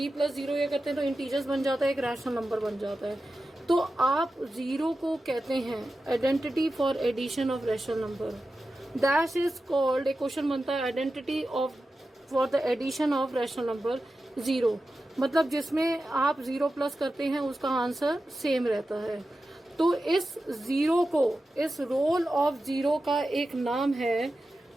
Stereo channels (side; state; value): both; normal; correlation 0.92